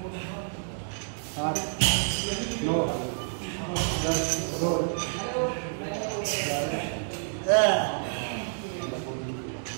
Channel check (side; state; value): left; silent; 59 dB below the other